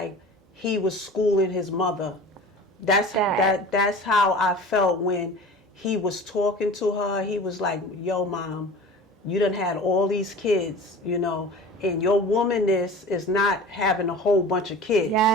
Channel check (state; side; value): normal; both; correlation 0.38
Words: he was schooling his mother. That's how I felt when he was talking to her. He was like, yo, Mom, you done had all these kids, you know, and your womanness is not having a whole bunch of kids. You